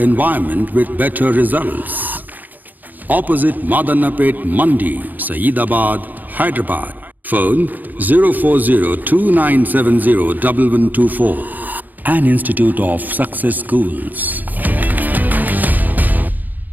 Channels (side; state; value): left; late; 0.084 ms